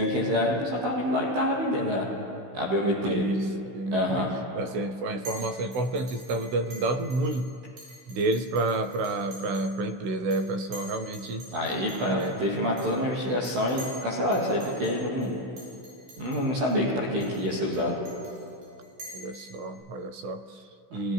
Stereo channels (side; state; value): left; late; 16 ms